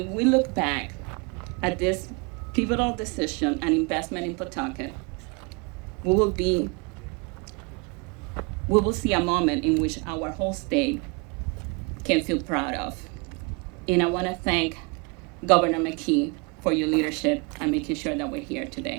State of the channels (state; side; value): quieter; left; 30.3 dB